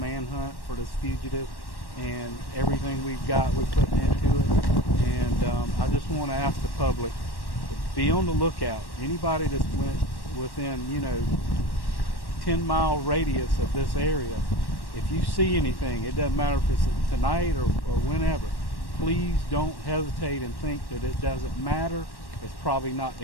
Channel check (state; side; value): late; right; 1.1 ms